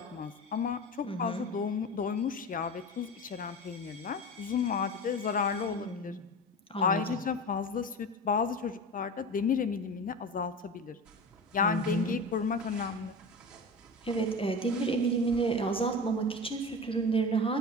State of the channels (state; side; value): normal; both; correlation 0.29